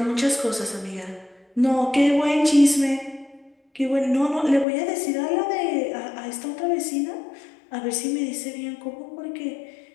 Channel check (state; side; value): drops out; right; at 4.7 s